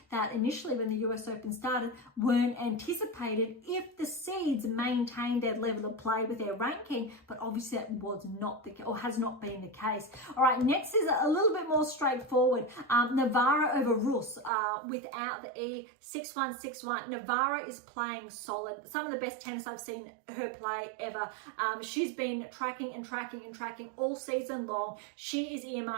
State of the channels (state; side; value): drops out; left; at 14.5 s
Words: that initially, when the US Open started, weren't anticipated if the seeds maintained their level of play with their ranking. But obviously that was not the or has not been the case. All right, next is a little bit more straightforward. Navarro over Rus without the E, 6-1, 6-1. Navarro is playing solid. Some of the best tennis I've seen her play ever. She's been tracking all season long. She is